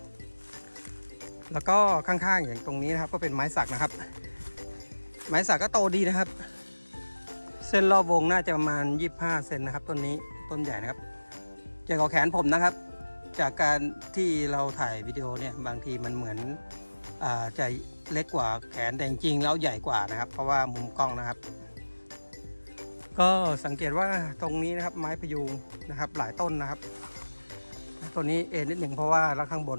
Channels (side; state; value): both; inverted; correlation -1.00